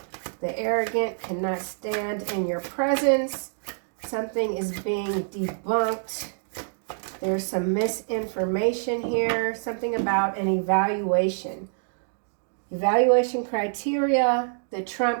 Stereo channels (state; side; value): silent; left; digital silence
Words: The arrogant cannot stand in your presence. Something is being debunked. There's some misinformation here. Something about an evaluation. Evaluation criteria, the